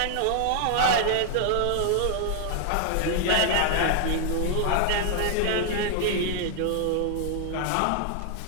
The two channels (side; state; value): both; different; correlation 0.00